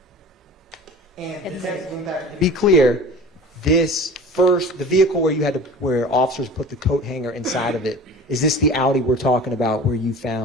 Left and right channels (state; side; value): normal; both; correlation 0.39